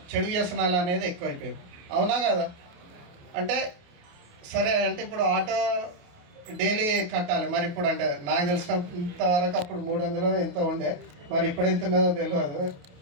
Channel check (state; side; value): late; left; 28 ms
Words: చెడు వ్యసనాలు అనేది ఎక్కువైపోయింది. అవునా కదా? అంటే సరే అంటే ఇప్పుడు ఆటో డైలీ కట్టాలి, మరి ఇప్పుడు అంటే నాకు తెలిసినంత వరకు అప్పుడు 300 ఎంతో ఉండే, మరి ఇప్పుడు ఎంత ఉన్నదో తెలియదు.